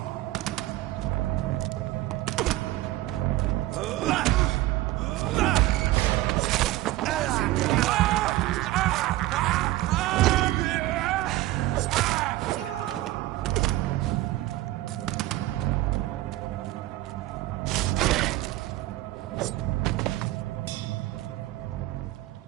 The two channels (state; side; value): quieter; left; 16.5 dB